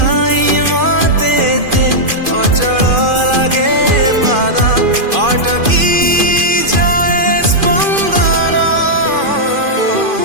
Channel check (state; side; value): late; left; 2.5 ms